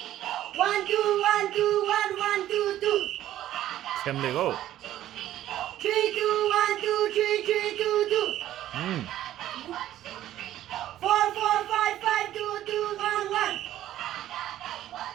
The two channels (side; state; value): left; quieter; 13.0 dB